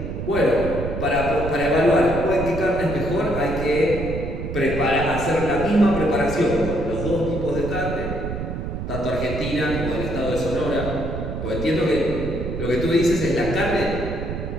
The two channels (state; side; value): noise; right; rumble, 5 dB below the sound